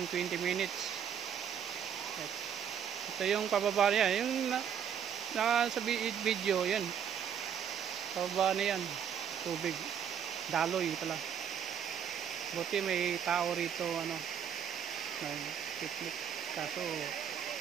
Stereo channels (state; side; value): quieter; left; 8.4 dB